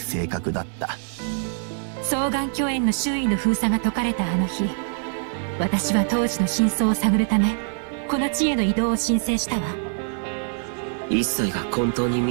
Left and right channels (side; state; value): left; silent; 63 dB below the other